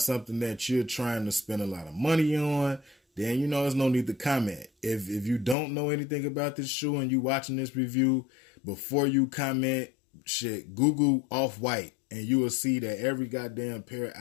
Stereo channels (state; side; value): drops out; right; at 5.6 s